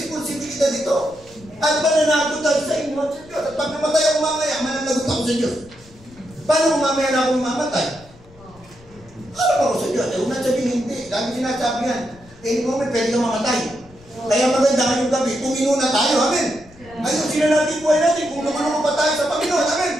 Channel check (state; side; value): noise; left; rumble, 24 dB below the sound